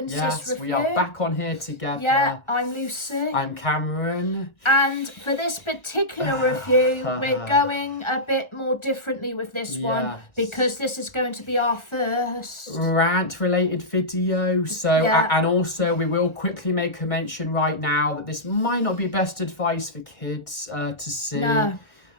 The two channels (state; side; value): late; right; 1.4 ms